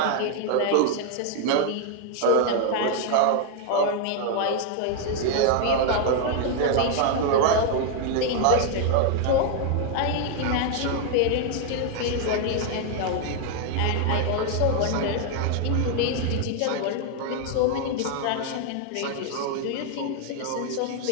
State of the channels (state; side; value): different; both; correlation 0.00